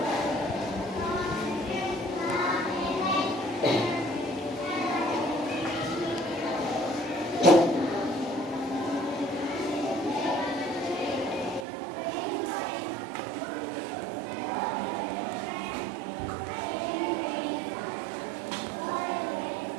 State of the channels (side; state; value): left; drops out; at 11.7 s